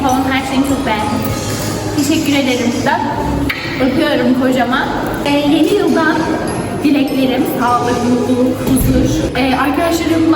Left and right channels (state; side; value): identical; both; correlation 1.00